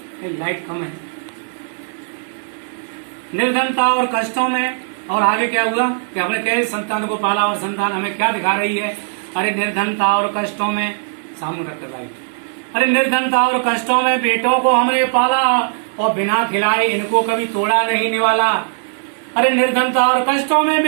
लाइट कम है। निर्धनता और कष्टों में, और आगे क्या हुआ कि हमने कैसे संतान को पाला और संतान हमें क्या दिखा रही है। अरे निर्धनता और कष्टों में, सामने रखकर लाइट। अरे निर्धनता और कष्टों में बेटों को हमने पाला और बिना खिलाए इनको कभी तोड़ा नहीं निवाला। अरे निर्धनता और कष्टों में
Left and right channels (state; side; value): silent; left; 67 dB below the other